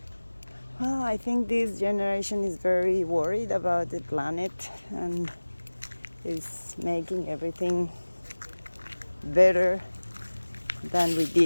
Well, I think this generation is very worried about the planet and is making everything better than we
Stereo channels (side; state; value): both; inverted; correlation -1.00